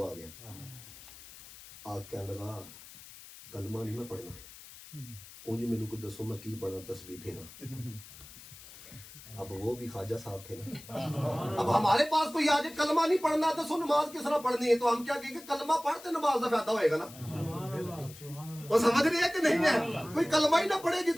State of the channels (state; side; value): noise; left; hiss, 18 dB below the sound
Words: آ گیا، آگ کہنے لگا کلمہ نہیں میں پڑھنا، اونج میرے کو دسو میں کی پڑھنا، تسبیح پھیرا۔ اب وہ بھی خواجہ صاحب تھے نا، اب ہمارے پاس کوئی آج کلمہ نہیں پڑھنا تو سو نماز کس طرح پڑھنی ہے، تو ہم کیا کہیں گے کلمہ پڑھتے نماز کا فائدہ ہوئے گا نا۔ وہ سمجھ رہی ہے کہ نہیں ہے؟ کوئی کلمہ ہی نہ پڑھے